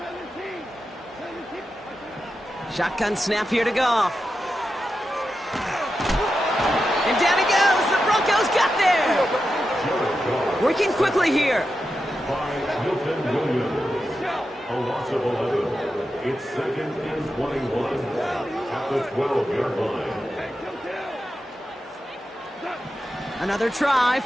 Shotgun snap here to Goff. And down he goes. The Broncos got there. Working quickly here. By Milton Williams. A loss of 11. It's second and 21 at the 12-yard line. Another try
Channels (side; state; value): both; normal; correlation 0.89